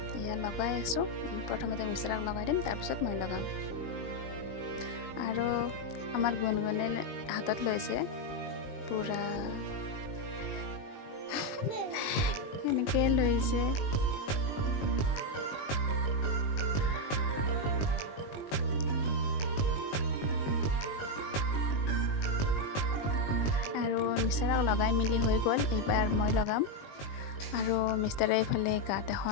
এয়া লগাই আছোঁ। প্ৰথমতে মিষ্টাৰক লগাই দিম, তাৰপিছত মই লগাম। আৰু আমাৰ গুণগুণে হাতত লৈছে পূৰা এনেকৈ লৈছে। আৰু মিষ্টাৰক লগাই মেলি হৈ গ'ল। এইবাৰ মই লগাম। আৰু মিষ্টাৰে এইফালে গাত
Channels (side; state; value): right; late; 20 ms